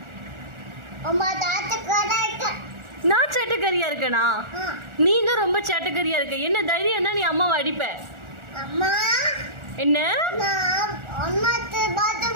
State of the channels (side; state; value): left; late; 1.4 ms